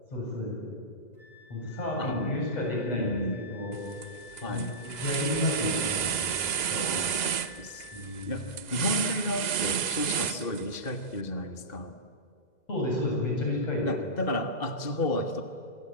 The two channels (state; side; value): late; right; 2.0 ms